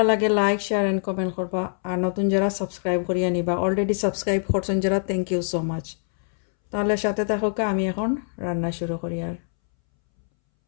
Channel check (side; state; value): right; silent; 63 dB below the other